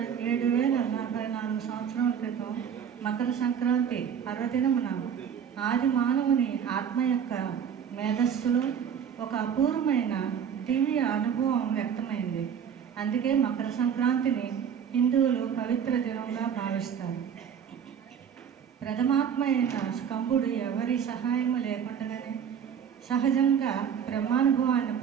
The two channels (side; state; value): left; quieter; 7.9 dB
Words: సంవత్సరాల క్రితం మకర సంక్రాంతి పర్వదినమున ఆది మానవుని ఆత్మ యొక్క మేధస్సులో ఒక అపూర్వమైన దివ్య అనుభవం వ్యక్తమైంది. అందుకే మకర సంక్రాంతిని హిందువులు పవిత్ర దినంగా భావిస్తారు. ప్రథమాత్మ అయిన స్కంభుడు ఎవరి సహాయం లేకుండానే సహజంగా బ్రహ్మానుభవాన్ని